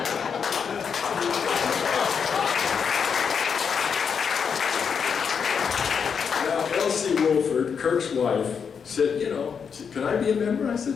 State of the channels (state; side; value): quieter; right; 6.6 dB